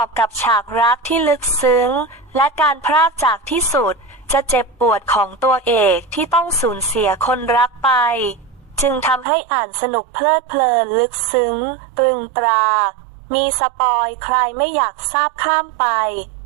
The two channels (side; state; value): left; drops out; at 9.2 s